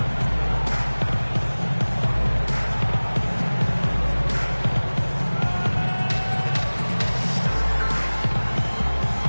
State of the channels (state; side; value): inverted; both; correlation -1.00